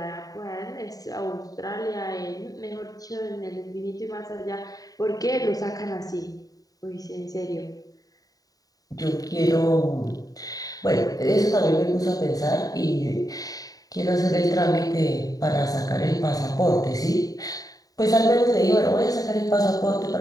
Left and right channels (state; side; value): late; right; 0.18 ms